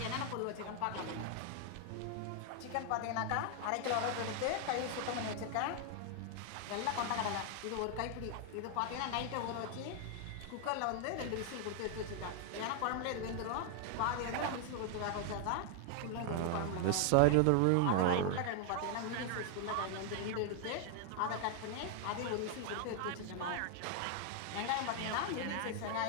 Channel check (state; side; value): different; both; correlation 0.00